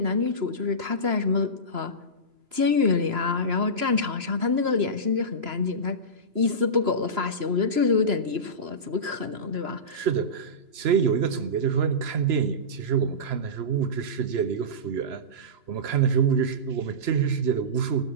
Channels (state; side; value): late; left; 3.0 ms